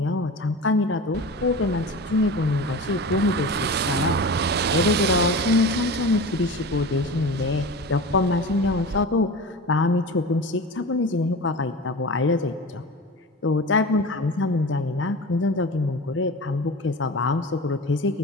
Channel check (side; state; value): both; normal; correlation 0.32